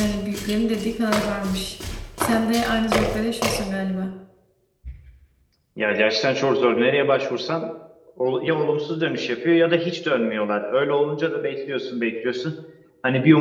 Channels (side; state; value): both; identical; correlation 1.00